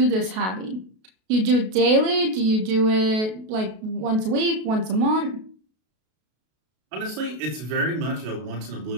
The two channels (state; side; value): late; left; 32 ms